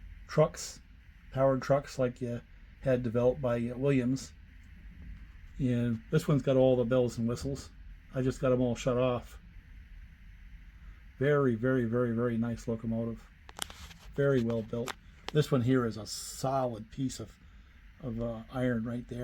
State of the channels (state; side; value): identical; both; correlation 1.00